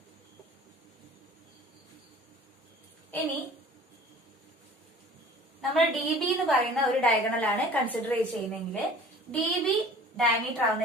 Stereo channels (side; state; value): both; normal; correlation 0.46